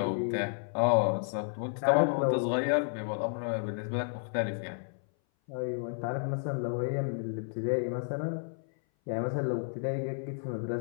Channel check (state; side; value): silent; right; 57 dB below the other